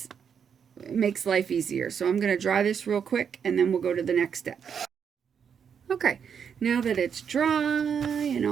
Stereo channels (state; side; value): quieter; left; 7.3 dB